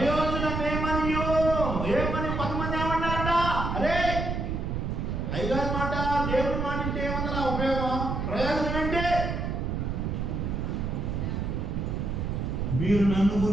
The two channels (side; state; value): right; noise; rumble, 2 dB below the sound